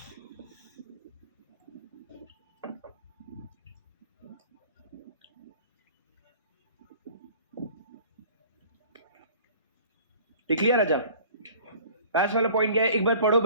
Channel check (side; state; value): both; inverted; correlation -0.47